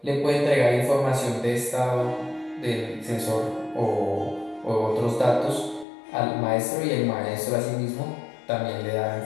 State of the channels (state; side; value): drops out; right; at 5.9 s